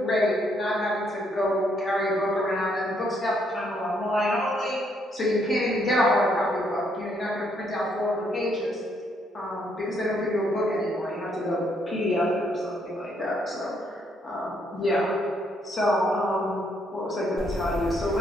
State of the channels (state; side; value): normal; both; correlation 0.72